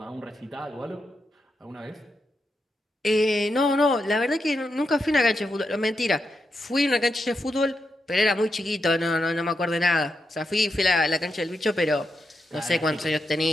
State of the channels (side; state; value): both; normal; correlation 0.85